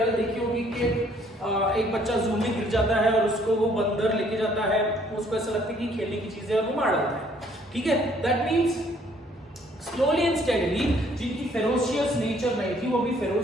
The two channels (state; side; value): normal; both; correlation 0.63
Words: देखी होगी कि एक बच्चा जू में गिर जाता है और उसको वो बंदर लेके जाता है, उसको ऐसा लगता है कि खेलने की चीजें, और वो मार डालता है, ठीक है। That means slowly and steadily जिनकी फेरोशियस नेचर नहीं थी, वो भी